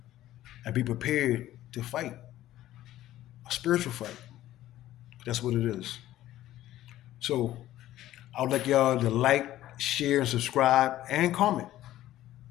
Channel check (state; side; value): quieter; right; 14.1 dB